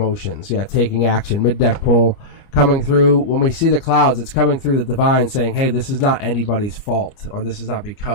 Yeah, taking action, mid-deck pull, coming through. When we see the clouds, it's coming through the divine saying, hey, this is not anybody's fault, or this is not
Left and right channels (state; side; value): late; right; 29 ms